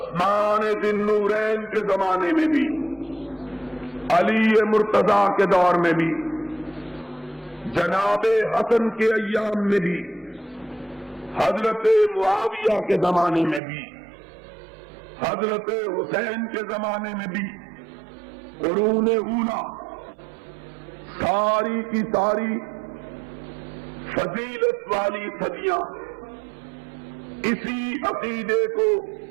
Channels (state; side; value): drops out; left; at 13.6 s